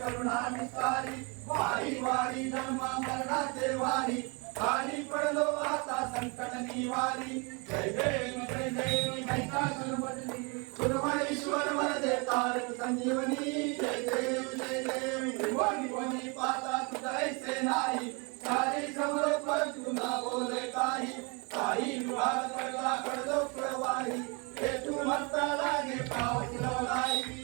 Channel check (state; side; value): quieter; left; 31.4 dB